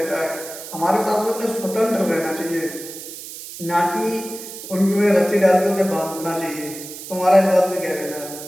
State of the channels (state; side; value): noise; right; hiss, 12 dB below the sound